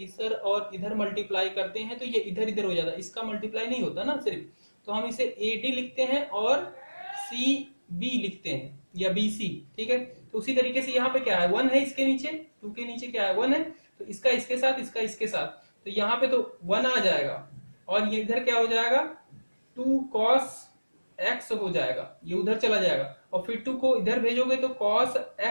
और इधर मल्टीप्लाई करते हैं तो ये इधर इधर हो जाता है, इसका मल्टीप्लाई नहीं होता ना सिर्फ। तो हम इसे AD लिखते हैं और CB लिखते हैं या BC। ठीक है, तो उसी तरीके से यहाँ पे क्या है, 1 है, इसके नीचे 2 के नीचे क्या है, 1 है, तो इसका इसके साथ, इसका इसके साथ, तो यहाँ पे तो 1 आ जाएगा और ये इधर क्या हो जाएगा, 2 cos x हो जाएगा, ये उधर चला जाएगा और फिर 2 को इधर भेजोगे तो cos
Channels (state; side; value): inverted; both; correlation -1.00